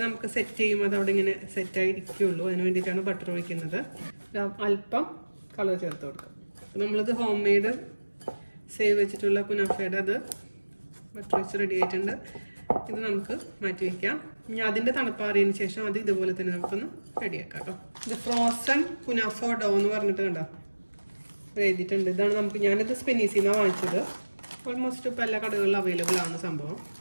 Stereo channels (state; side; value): inverted; both; correlation -1.00